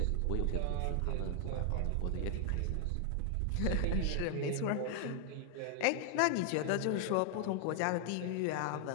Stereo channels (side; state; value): both; different; correlation 0.00